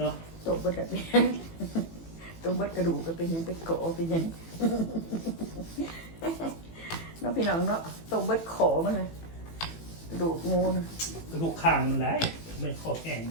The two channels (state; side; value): late; right; 18 ms